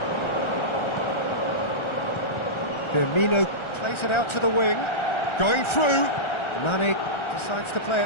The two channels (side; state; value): right; late; 1.3 ms